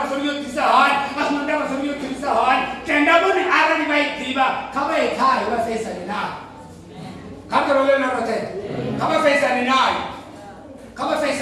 sori yotisa hani. Asinandava sori yotisa hani. Tenda boni ara ni vaidiva. Kama ekai wa fesa ni nai. Kako role na rote. Kama fesa ni nai. Kama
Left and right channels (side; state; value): both; identical; correlation 1.00